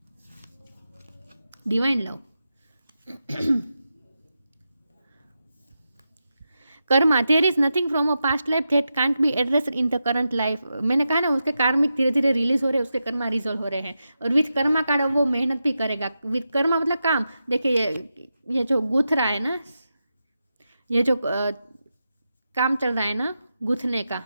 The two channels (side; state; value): both; inverted; correlation -0.89